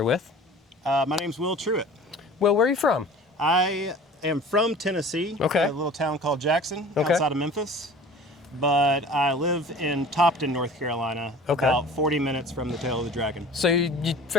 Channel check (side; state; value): both; normal; correlation 0.43